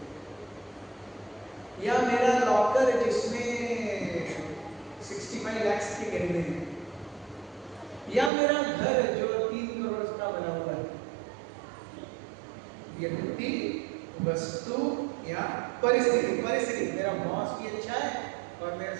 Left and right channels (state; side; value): drops out; left; at 8.3 s